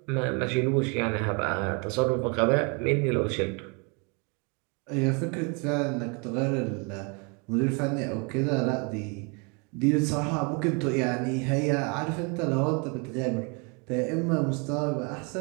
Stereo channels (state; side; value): quieter; left; 32.9 dB